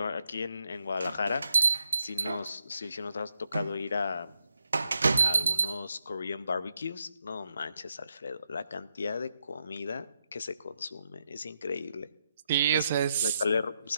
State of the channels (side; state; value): both; inverted; correlation -0.82